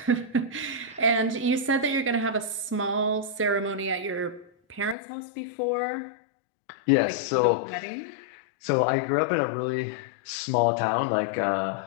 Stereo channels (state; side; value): drops out; right; at 5.0 s